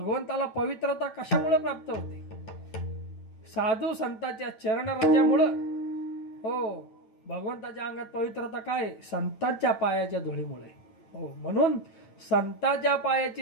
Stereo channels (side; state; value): right; late; 9.0 ms